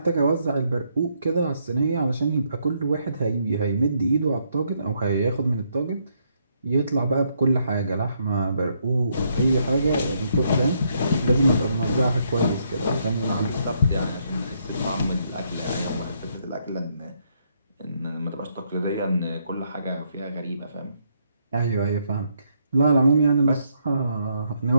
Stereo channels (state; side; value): inverted; both; correlation -0.74